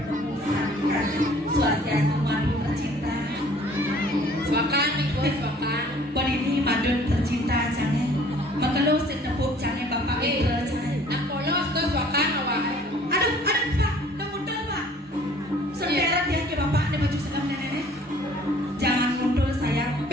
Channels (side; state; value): both; normal; correlation 0.54